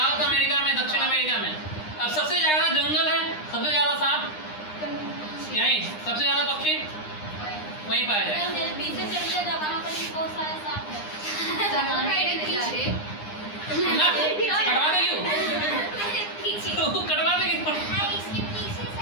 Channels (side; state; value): right; late; 9.8 ms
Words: अमेरिका में, दक्षिण अमेरिका में। अब सबसे ज्यादा जंगल है, सबसे ज्यादा सांप यहीं, सबसे ज्यादा पक्षी वहीं पाया जाएगा। ना कटवा देगी वो कटवा देगी।